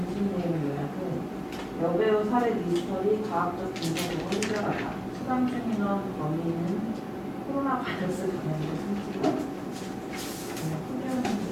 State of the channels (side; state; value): both; identical; correlation 1.00